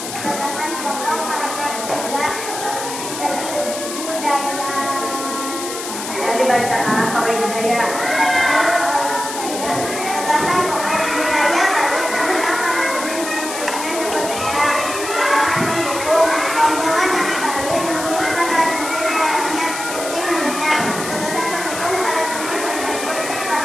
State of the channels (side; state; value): left; noise; hiss, 7 dB below the sound